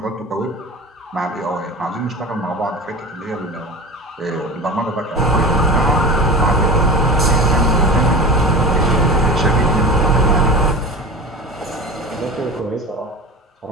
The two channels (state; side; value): normal; both; correlation 0.30